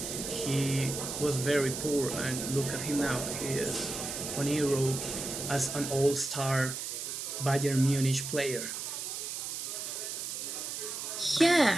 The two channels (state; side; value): noise; right; hiss, 5 dB below the sound